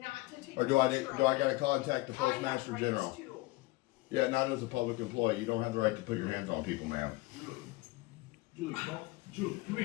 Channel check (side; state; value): right; quieter; 21.6 dB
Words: to take Or do I gotta contact the postmaster general? Too. Yeah, not as a public employee. You don't have the right to put your hands on people, ma'am. Julie, come